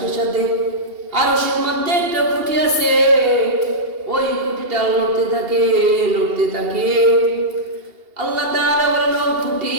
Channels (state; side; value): late; left; 2.8 ms